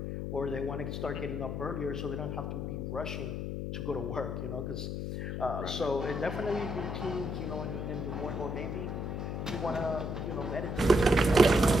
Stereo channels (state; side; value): noise; left; hum, 3 dB below the sound